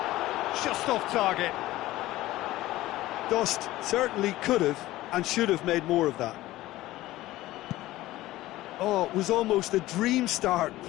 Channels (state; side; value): quieter; right; 16.7 dB